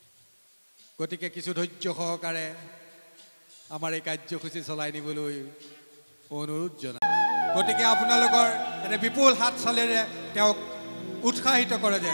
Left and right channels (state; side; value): inverted; both; correlation -1.00